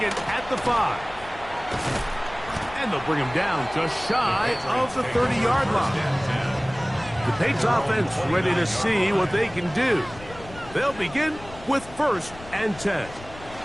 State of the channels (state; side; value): noise; left; rumble, 18 dB below the sound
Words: at the 5. And they'll bring him down just shy of the 30-yard line. The Patriots offense ready to see what they can do. They'll begin with 1st and 10.